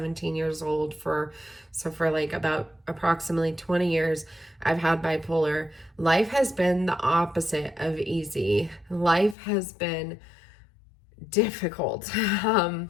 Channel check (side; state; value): right; drops out; at 9.3 s